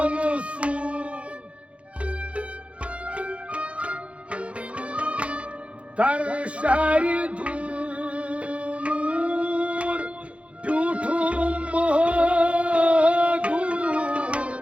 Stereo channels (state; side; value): late; left; 0.062 ms